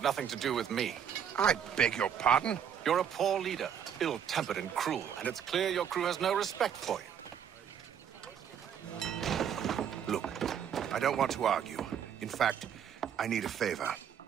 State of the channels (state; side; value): quieter; left; 8.4 dB